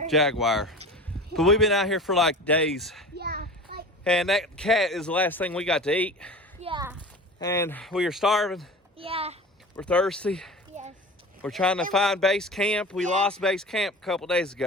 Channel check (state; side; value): normal; both; correlation 0.35